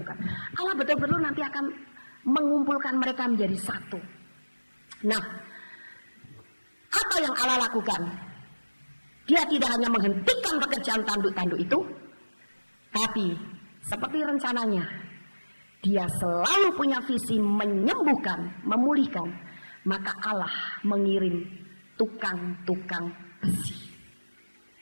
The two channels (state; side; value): inverted; both; correlation -1.00